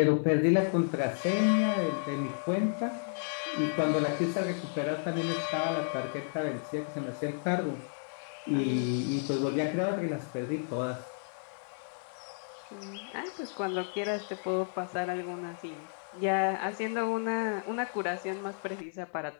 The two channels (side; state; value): right; silent; digital silence